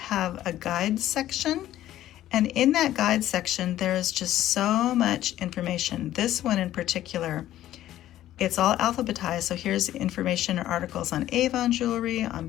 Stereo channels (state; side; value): quieter; right; 13.3 dB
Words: a guide section. And in that guide section, there is just so much information. This one in particular, it's all alphabetized. So here's information or articles on Avon jewelry,